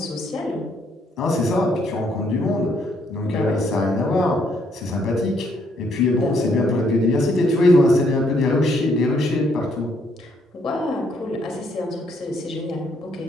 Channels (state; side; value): normal; both; correlation 0.70